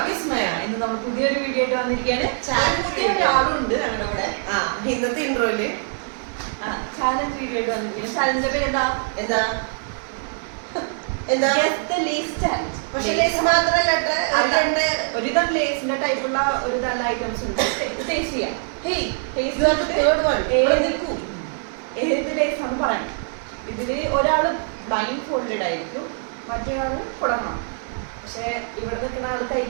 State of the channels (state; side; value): silent; left; 59 dB below the other